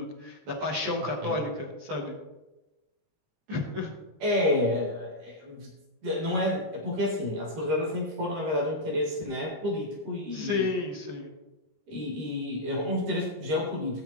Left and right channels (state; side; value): late; left; 20 ms